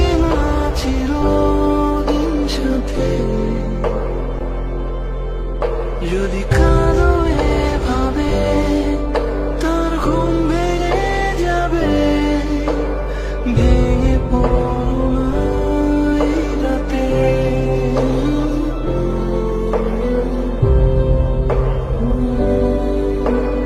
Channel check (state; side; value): identical; both; correlation 1.00